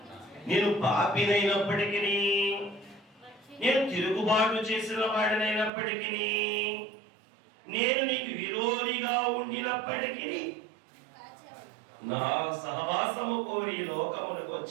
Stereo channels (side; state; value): left; drops out; at 5.7 s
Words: నేను పాపినైనప్పటికీ, నేను తిరుగుబాటు చేసిన వాడినైనప్పటికీ, నేను నీకు విరోధిగా ఉండినప్పటికీ, నా సహవాసము కోరి లోకములకు